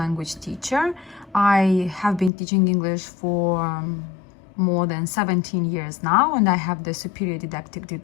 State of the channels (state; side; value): drops out; right; at 2.3 s